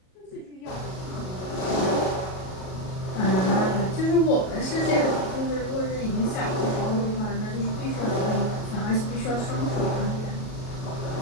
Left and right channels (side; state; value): right; late; 37 ms